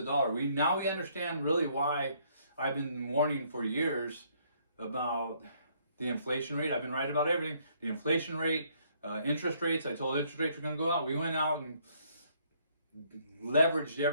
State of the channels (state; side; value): inverted; both; correlation -0.66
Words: dollar. We understand really why I've been warning for years about the inflation rate. I've been right about everything. The inflation rate, interest rates. I told interest rates were going to go out. We went out and leveraged